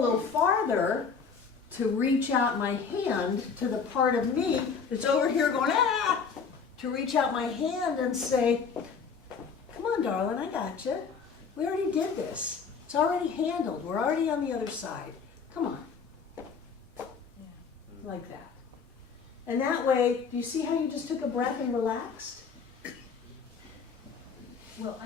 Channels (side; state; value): right; quieter; 5.8 dB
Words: farther to reach out my hand to the part of me that's over here going, ah, to reach out my hand and say, come on, darling, I got you. We already did this. It's already handled. We're already on the other side. Come on. Like that. And that way, do you see how you just took a breath and relaxed? Well,